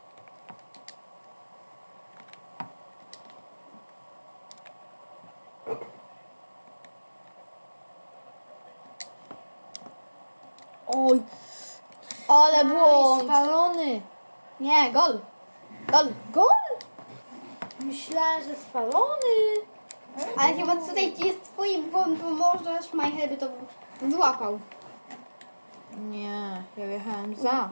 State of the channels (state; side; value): inverted; both; correlation -1.00